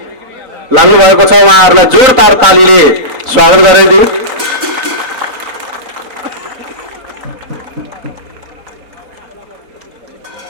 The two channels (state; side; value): late; left; 3.9 ms